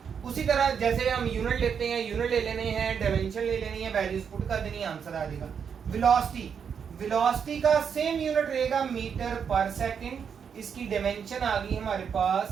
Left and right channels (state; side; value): quieter; left; 7.1 dB